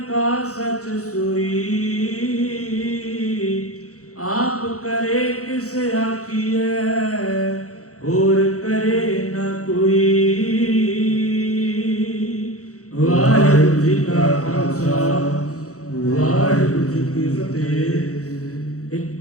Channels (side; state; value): right; late; 0.65 ms